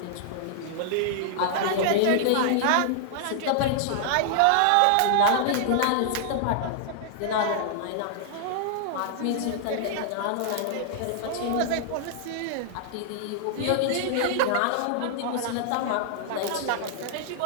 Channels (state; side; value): different; both; correlation -0.01